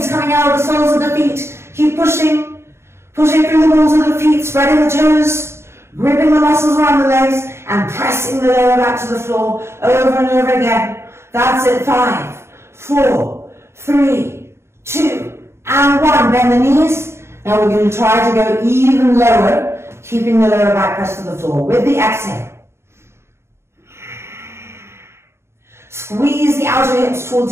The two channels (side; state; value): left; late; 0.13 ms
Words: coming out of the soles of the feet. Keep pushing. Pushing through the balls of the feet, spreading the toes. Gripping the muscles around the legs and pressing the lower back to the floor over and over again. That's it. 5, 4, 3, 2, and 1. Bend the knees. Now we're going to try to go even lower, keeping the lower back pressed to the floor. With the exhale. Squeeze the outer hips